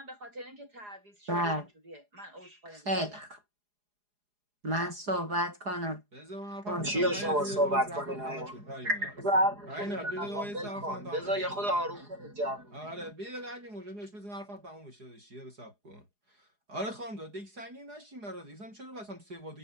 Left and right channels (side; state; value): left; late; 4.8 ms